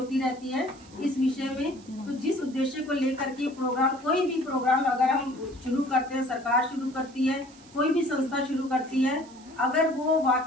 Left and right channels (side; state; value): right; noise; hiss, 24 dB below the sound